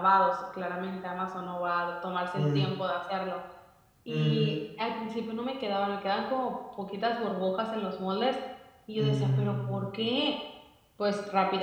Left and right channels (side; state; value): both; identical; correlation 1.00